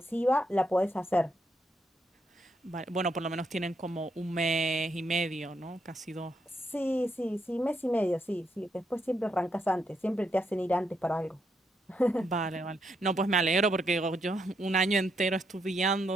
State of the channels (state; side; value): normal; both; correlation 0.78